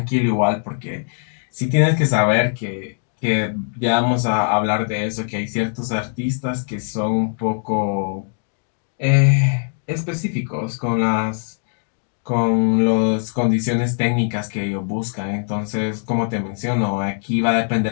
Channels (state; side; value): silent; right; 64 dB below the other